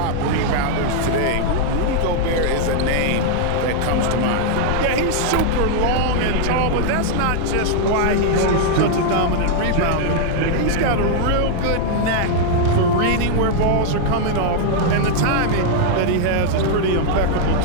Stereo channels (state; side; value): different; both; correlation 0.00